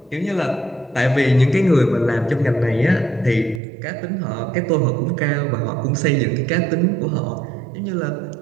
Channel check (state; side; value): drops out; left; at 3.6 s